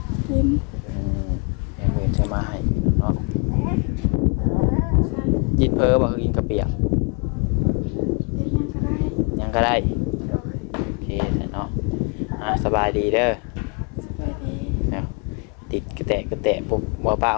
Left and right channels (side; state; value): right; quieter; 35.3 dB